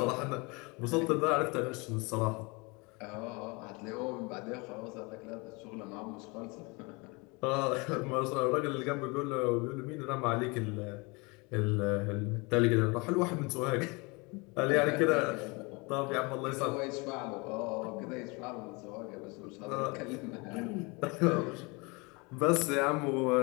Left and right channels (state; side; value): quieter; right; 27.9 dB